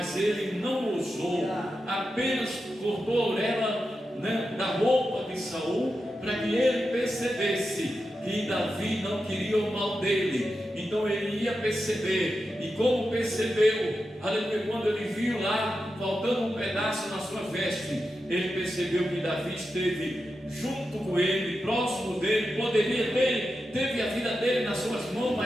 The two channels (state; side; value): normal; both; correlation 0.89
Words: ele não ousou, apenas cortou a orelha, da roupa de Saul, para que ele percebesse que Davi não queria o mal dele. Então ele ia perceber, e como percebeu, aleluia, quando ele viu lá faltando um pedaço na sua veste, ele percebeu que Davi esteve junto com ele, próximo dele, poderia ter, teve a vida dele nas suas mãos,